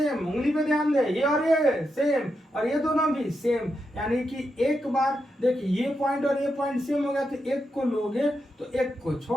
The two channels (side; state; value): both; normal; correlation 0.85